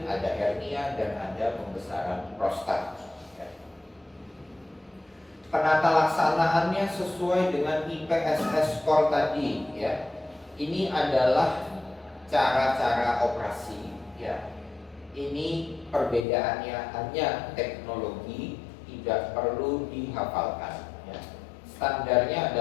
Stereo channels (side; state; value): right; drops out; at 16.2 s